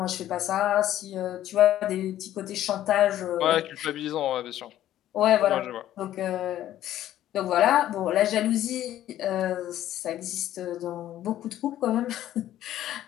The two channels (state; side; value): quieter; right; 12.7 dB